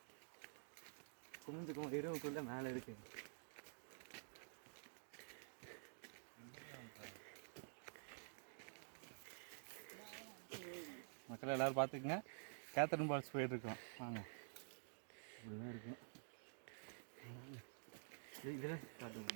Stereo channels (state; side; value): silent; left; digital silence